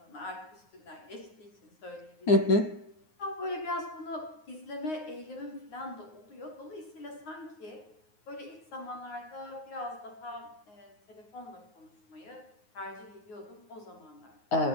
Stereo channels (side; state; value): right; late; 9.5 ms